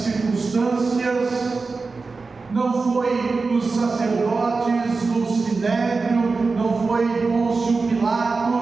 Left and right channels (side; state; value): left; quieter; 4.1 dB